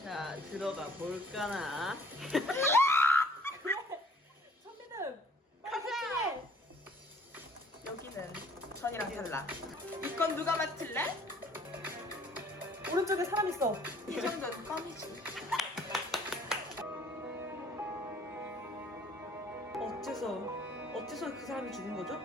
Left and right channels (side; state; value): both; normal; correlation 0.56